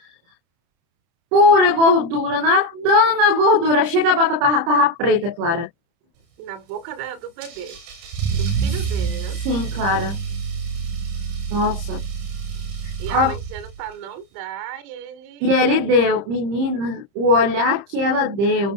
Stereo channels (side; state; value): left; late; 31 ms